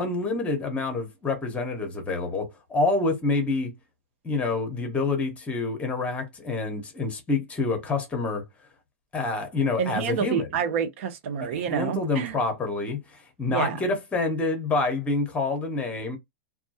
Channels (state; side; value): normal; both; correlation 0.17